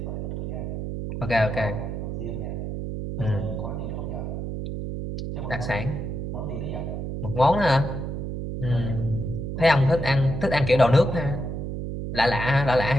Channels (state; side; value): noise; right; hum, 5 dB below the sound